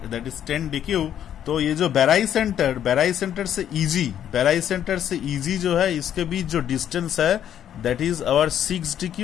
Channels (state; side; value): quieter; right; 10.1 dB